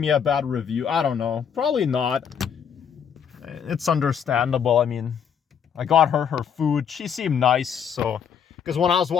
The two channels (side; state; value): right; quieter; 7.7 dB